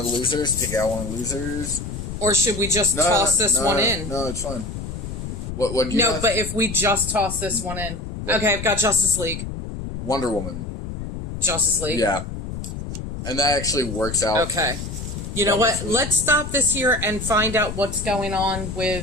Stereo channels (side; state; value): left; noise; rumble, 7 dB below the sound